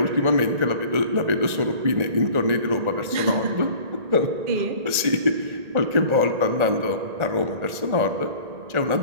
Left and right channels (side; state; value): left; late; 1.9 ms